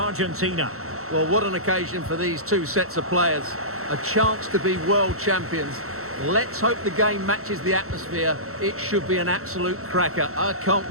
Well, what an occasion for these two sets of players. A chance to be world champions. Let's hope the game matches the atmosphere. It should be an absolute cracker. I can't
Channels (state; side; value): late; left; 0.63 ms